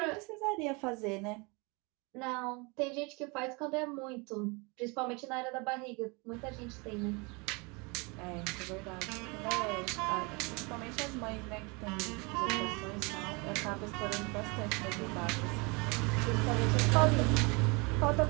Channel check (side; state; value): left; quieter; 28.9 dB